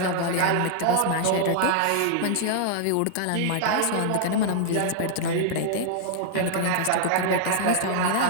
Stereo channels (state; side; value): different; both; correlation -0.01